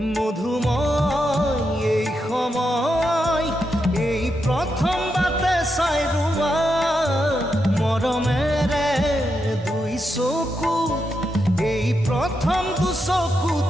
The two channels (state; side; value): normal; both; correlation 0.84